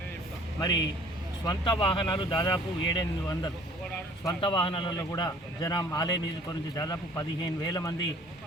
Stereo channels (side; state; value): both; normal; correlation 0.53